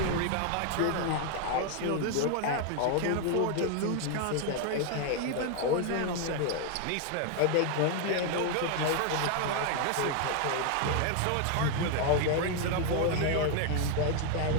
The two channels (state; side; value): different; both; correlation 0.00